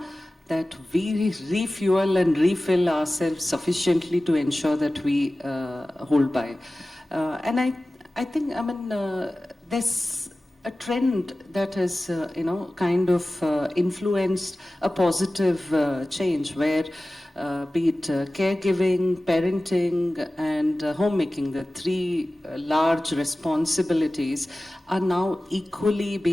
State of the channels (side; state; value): both; normal; correlation 0.97